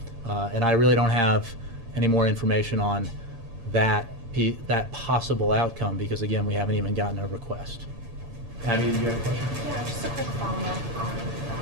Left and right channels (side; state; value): left; late; 8.7 ms